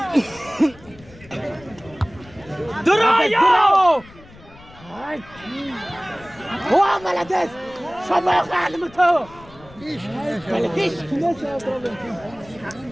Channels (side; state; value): left; noise; rumble, 22 dB below the sound